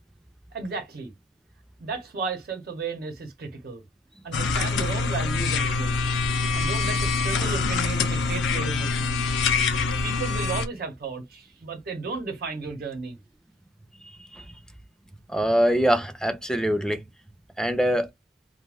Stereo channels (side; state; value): both; normal; correlation 0.62